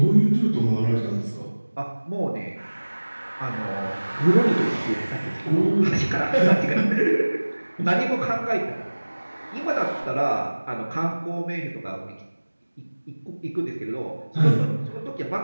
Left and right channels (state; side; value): inverted; both; correlation -1.00